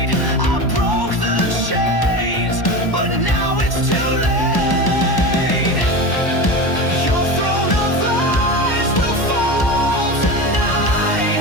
I broke the chains, but now it's too late. Your throne of lies will fall tonight.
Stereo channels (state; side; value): late; right; 1.0 ms